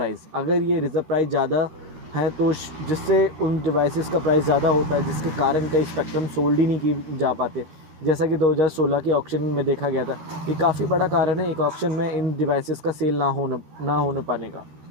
अगर ये रिज़र्व प्राइस ज़्यादा है तो जिससे उन डिवाइसेस का प्राइस ज़्यादा होता है, जिसके कारण कई स्पेक्ट्रम सोल्ड ही नहीं की जा पाते, जैसा कि 2016 के ऑक्शन में देखा गया था। ये काफ़ी बड़ा कारण है एक ऑक्शन में इन डिवाइसेस का सेल ना होने पाने का।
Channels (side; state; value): left; late; 13 ms